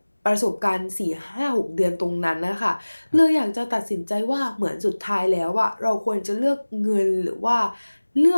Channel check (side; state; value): both; inverted; correlation -1.00